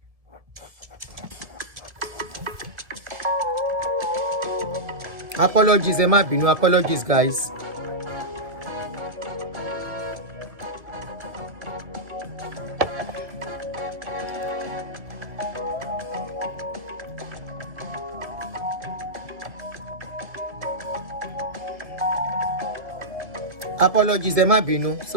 Apologies, ẹ má bínú. Apologies, guys. Apologies, ẹ má bínú.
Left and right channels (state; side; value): late; left; 1.7 ms